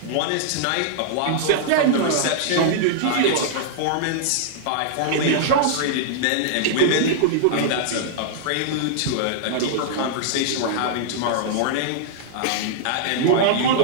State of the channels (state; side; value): different; both; correlation -0.01